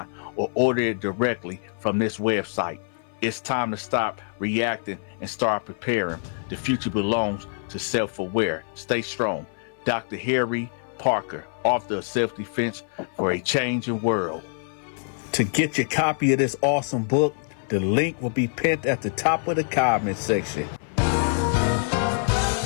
or order it directly from this website. It's time to stop reacting and start preparing. The future belongs to self-aware. Stay strong. Dr. Harry Parker, author of Self-Defense for a Changing World. To get your copy of this awesome book, the link will be pinned at the top of the comment section.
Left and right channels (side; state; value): right; silent; 55 dB below the other